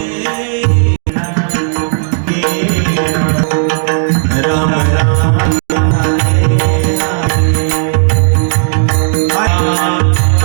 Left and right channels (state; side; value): silent; left; digital silence